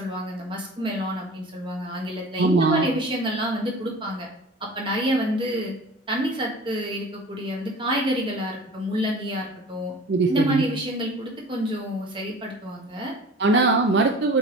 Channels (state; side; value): normal; both; correlation 0.41